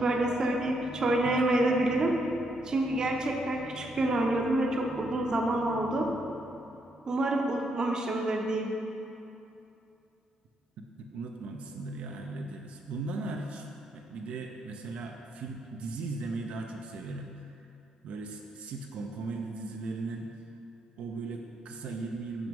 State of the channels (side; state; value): both; normal; correlation 0.77